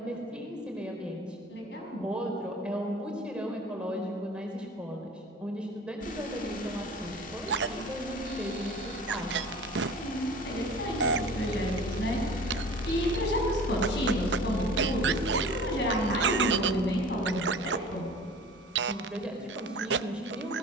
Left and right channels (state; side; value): normal; both; correlation 0.42